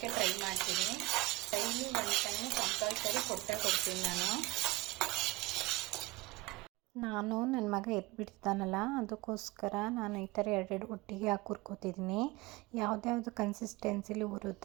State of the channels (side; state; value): left; quieter; 21.3 dB